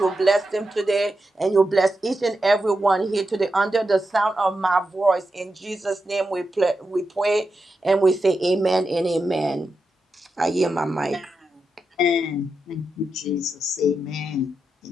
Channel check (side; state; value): both; normal; correlation 0.88